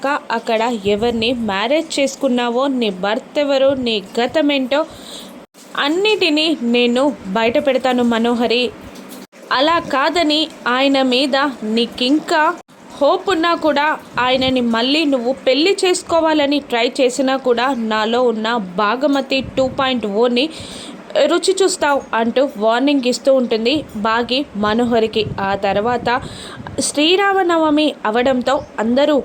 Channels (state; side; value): identical; both; correlation 1.00